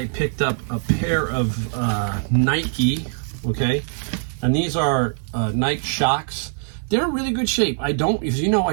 picked up a pair of Nike, okay? And these are Nike Shocks. They're in really good shape. As you know,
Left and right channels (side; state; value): left; silent; 61 dB below the other